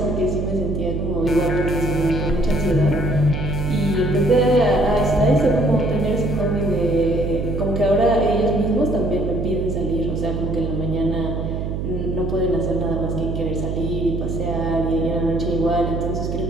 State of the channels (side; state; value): right; noise; hum, 3 dB below the sound